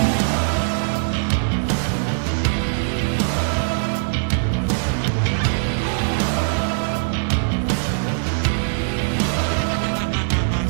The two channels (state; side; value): silent; left; digital silence